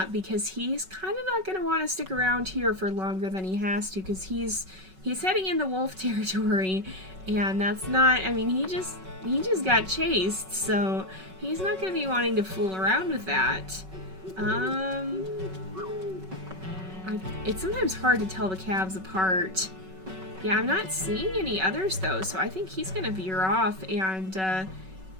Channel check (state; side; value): late; left; 5.3 ms